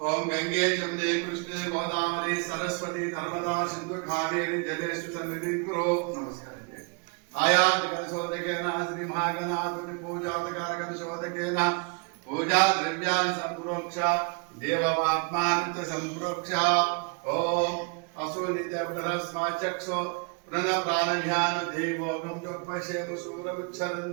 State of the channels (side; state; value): left; quieter; 33.6 dB